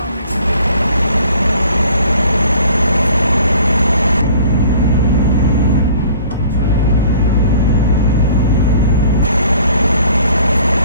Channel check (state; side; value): inverted; both; correlation -0.52